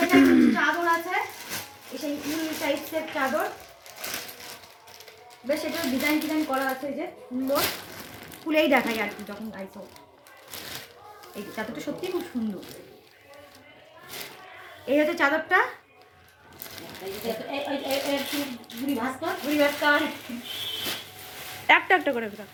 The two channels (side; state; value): both; identical; correlation 1.00